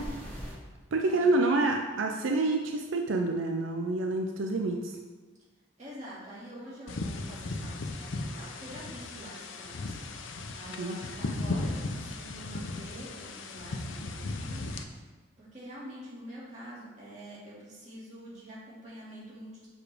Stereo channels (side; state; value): both; normal; correlation 0.40